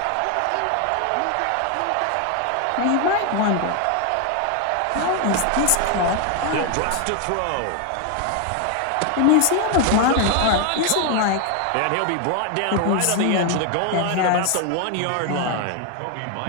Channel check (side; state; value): both; different; correlation 0.01